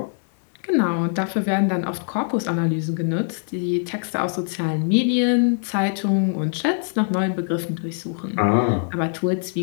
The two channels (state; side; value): silent; right; 64 dB below the other